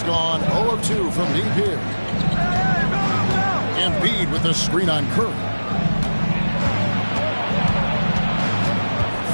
gone 0 of 2 from deep here. Embiid with a screen on Curry.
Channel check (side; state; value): both; inverted; correlation -1.00